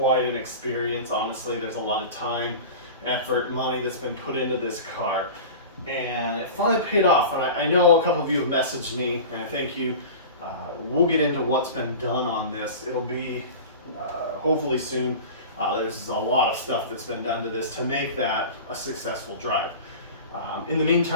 an experience. Honestly, there's a lot of time, effort, money that's been put into this car. And it finally paid off. And I know a couple of you have messaged me, and thank you. We'll get into what's been done on this. It'll be hopefully soon. There's a lot of stuff that's been done to this to make that a successful drive. In the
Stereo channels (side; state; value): both; inverted; correlation -0.34